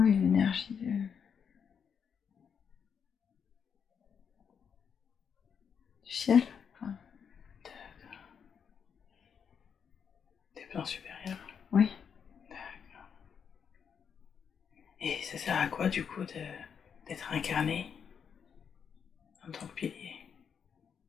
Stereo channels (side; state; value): right; quieter; 7.1 dB